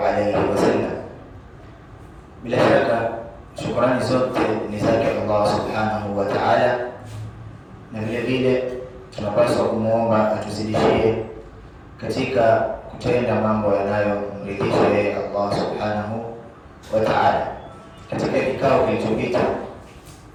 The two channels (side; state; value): both; identical; correlation 1.00